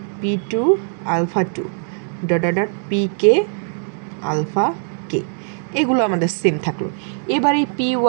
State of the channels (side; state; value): left; silent; 58 dB below the other